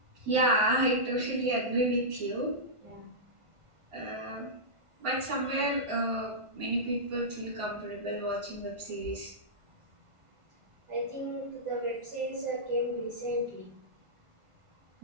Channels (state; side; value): late; left; 1.5 ms